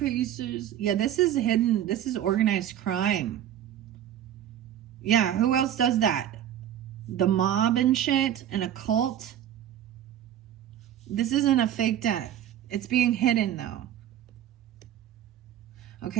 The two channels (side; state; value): left; quieter; 10.9 dB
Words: Yeah, this is hidden. This is organized crime. Yeah, who else does that? The mob and shit, and a cult. This isn't a fake death. It's being hidden, though.